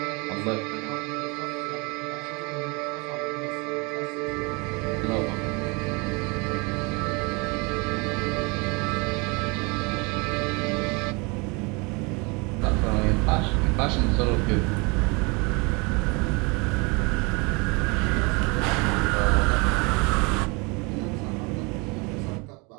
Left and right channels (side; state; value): left; quieter; 28.8 dB